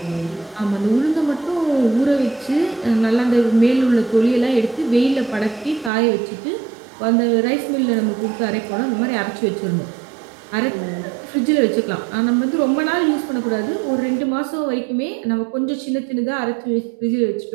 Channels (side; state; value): left; drops out; at 5.9 s